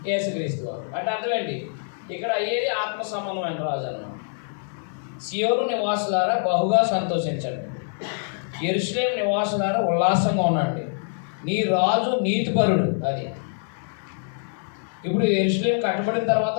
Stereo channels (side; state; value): right; silent; 62 dB below the other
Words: యేసుక్రీస్తు వారు. అంటే అర్థమేంటి? ఇక్కడ అయ్యేది ఆత్మ సంబంధమైన రాజు అన్నమాట. సియోను నివాసులారా బహుగా సంతోషించండి, యెరూషలేము నివాసులారా ఉల్లాసంగా ఉండండి, నీ రాజు నీతిపరుడు. అది ఇప్పుడు యెరూషలేము కట్టబడిన తర్వాత